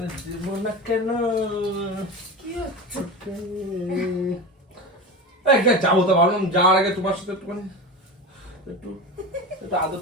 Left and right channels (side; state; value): both; normal; correlation 0.27